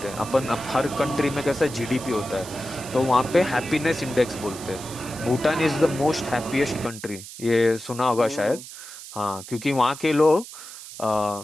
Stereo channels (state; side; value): noise; right; hiss, 14 dB below the sound